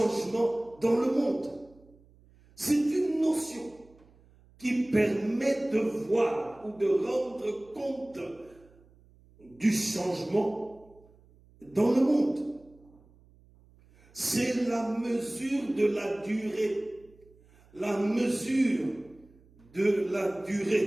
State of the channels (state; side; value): noise; right; hum, 28 dB below the sound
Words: dans le monde. C'est une notion qui permet de voir ou de rendre compte du changement dans le monde. C'est la mesure de la durée. La mesure de la